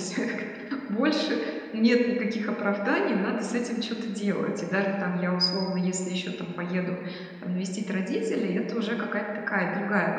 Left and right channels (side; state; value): both; identical; correlation 1.00